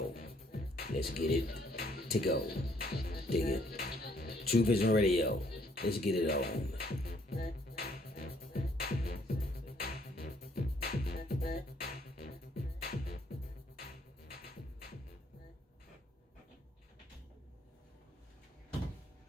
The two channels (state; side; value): normal; both; correlation 0.66